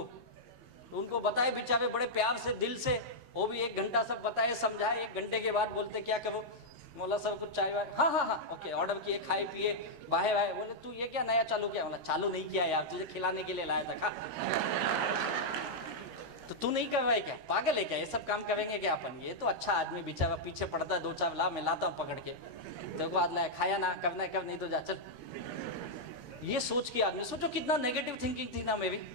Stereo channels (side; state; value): left; late; 13 ms